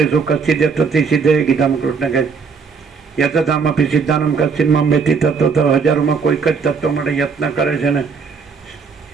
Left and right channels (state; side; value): quieter; left; 5.4 dB